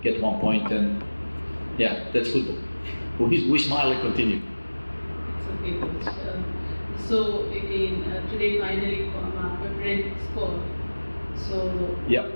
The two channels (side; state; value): both; inverted; correlation -1.00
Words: get 1 point, and yeah, that's football. We smile and continue. It's okay, Coach. So again, today finally Pepper scored. So yeah.